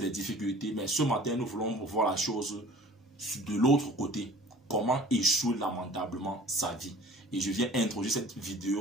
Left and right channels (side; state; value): both; normal; correlation 0.47